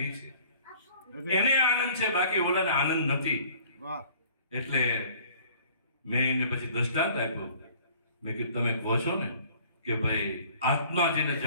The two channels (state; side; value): inverted; both; correlation -0.52